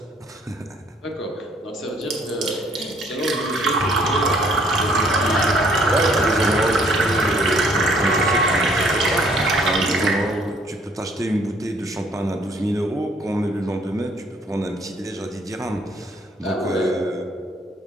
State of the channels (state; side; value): normal; both; correlation 0.62